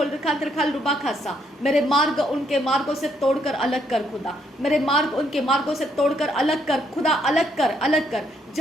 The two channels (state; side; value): normal; both; correlation 0.72